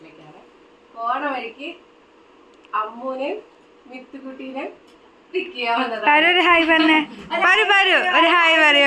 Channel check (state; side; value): identical; both; correlation 1.00